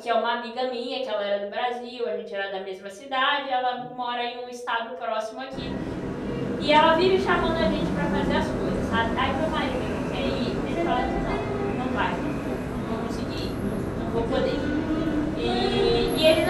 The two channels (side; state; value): both; identical; correlation 1.00